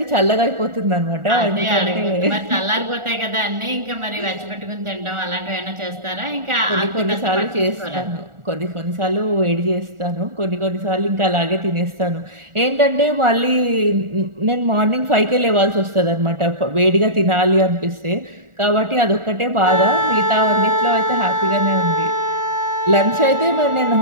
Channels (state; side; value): late; left; 1.4 ms